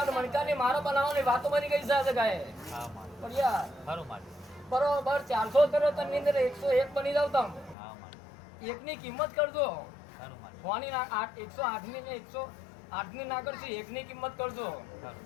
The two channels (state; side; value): drops out; right; at 7.8 s